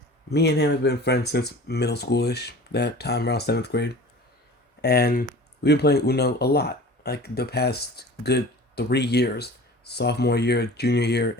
Me and him have been friends since middle schoolish, that time around 7th grade. And we've been playing Uno a lot, like the past good 3 years: sophomore year, junior year,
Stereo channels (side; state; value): both; normal; correlation 0.41